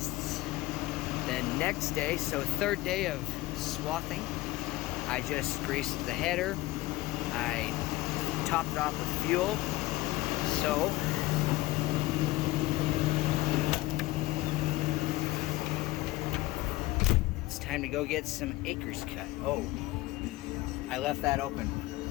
it's the next day, so third day of swathing. I just greased the header. I topped it off with fuel. So it's time to go get some acres cut. Oh, I left that open.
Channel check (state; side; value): quieter; right; 18.7 dB